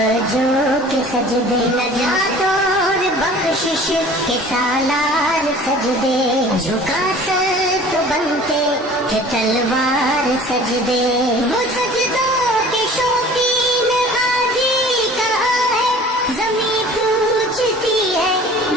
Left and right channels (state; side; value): normal; both; correlation 0.46